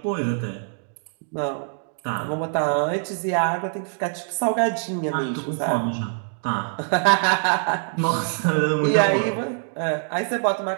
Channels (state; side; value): silent; left; digital silence